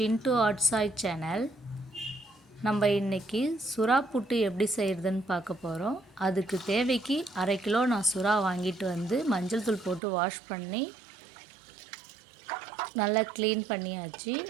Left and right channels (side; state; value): left; drops out; at 10.0 s